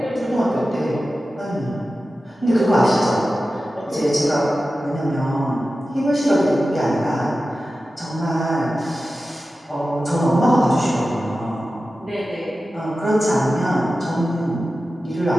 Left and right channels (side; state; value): both; normal; correlation 0.94